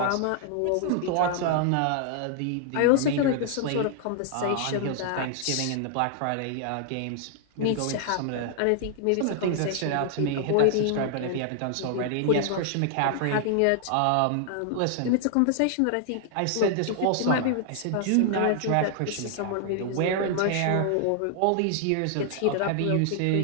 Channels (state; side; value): different; both; correlation 0.00